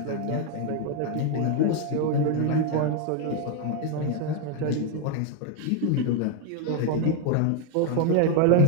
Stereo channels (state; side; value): different; both; correlation 0.01